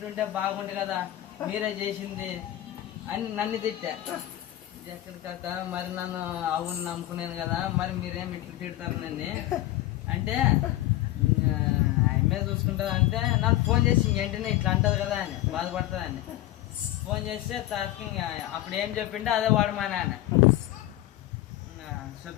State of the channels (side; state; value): right; quieter; 15.2 dB